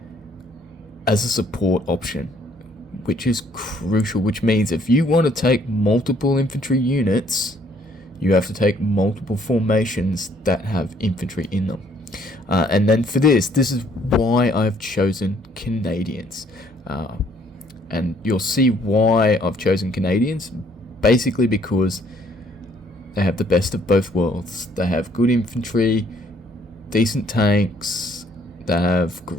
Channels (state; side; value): normal; both; correlation 0.64